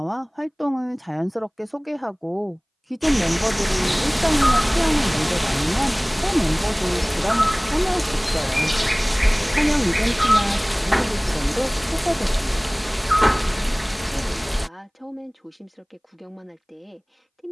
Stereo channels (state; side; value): identical; both; correlation 1.00